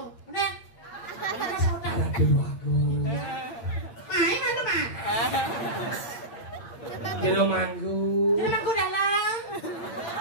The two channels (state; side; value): late; right; 8.6 ms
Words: Nek. Kena saudara. Aduh aku. Mai mana mah? Jelomangku. Jelomangku dalam.